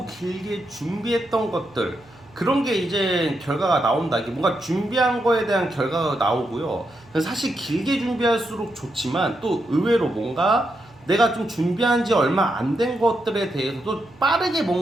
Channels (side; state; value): right; noise; hum, 27 dB below the sound